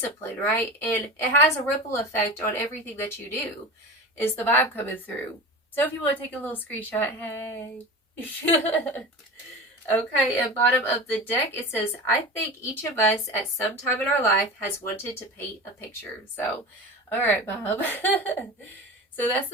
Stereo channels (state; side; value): normal; both; correlation 0.30